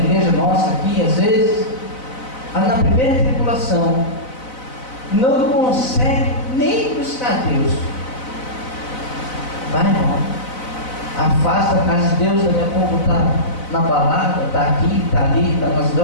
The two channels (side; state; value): right; late; 4.0 ms